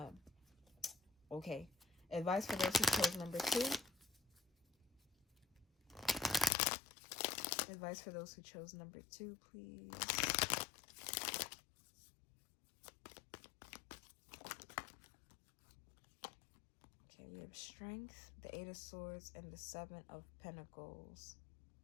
Okay. Advice for those who chose number 2. Advice for those who chose number 2, please. Okay, we have Strength, the Eight of Swords, and the Seven of Pentacles.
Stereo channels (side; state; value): right; drops out; at 6.5 s